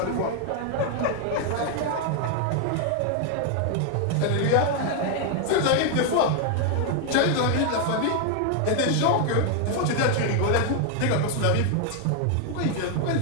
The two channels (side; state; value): both; different; correlation 0.00